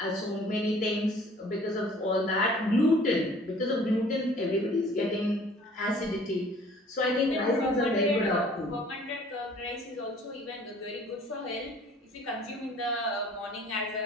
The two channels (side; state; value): both; normal; correlation 0.52